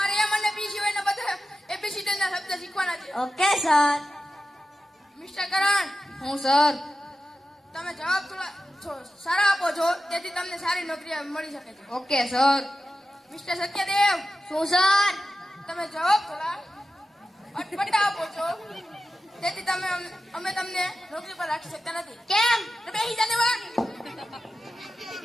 એમ અને બી સિવાયના બધા એબીસીડી ના શબ્દ શીખવાના છે ઓકે સર. મિસ્ટર કરણ હું સર. તમે જવાબ થોડા સારા આપો છો તેથી તમને સારી નોકરી મળી શકે છે ઓકે સર. મિસ્ટર સત્યદેવ શું સર? તમે જવાબ થોડા અટપટા આપો છો તેથી અમે તમને નોકરી પર રાખી શકતા નથી કેમ? તો બેસી જાને વા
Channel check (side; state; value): both; normal; correlation 0.93